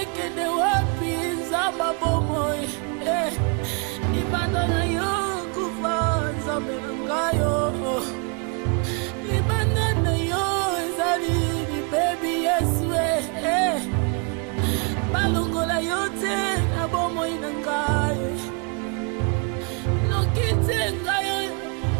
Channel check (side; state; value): left; quieter; 35.1 dB